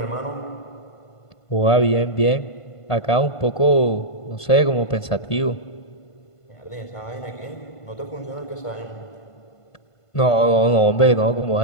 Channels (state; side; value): late; right; 1.5 ms